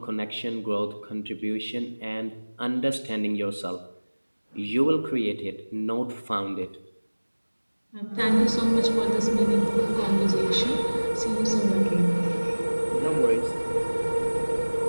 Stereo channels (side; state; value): both; inverted; correlation -1.00